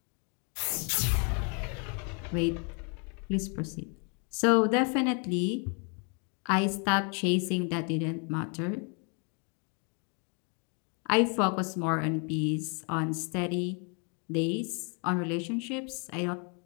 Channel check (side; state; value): right; quieter; 37.0 dB